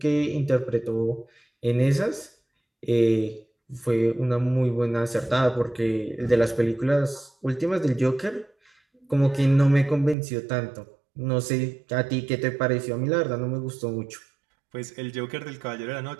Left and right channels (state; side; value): drops out; left; at 10.2 s